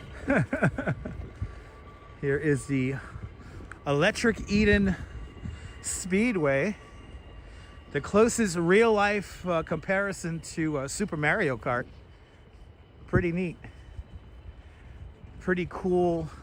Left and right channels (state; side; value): identical; both; correlation 1.00